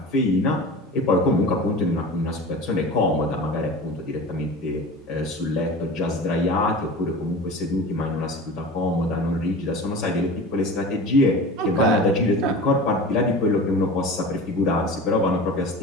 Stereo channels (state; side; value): normal; both; correlation 0.35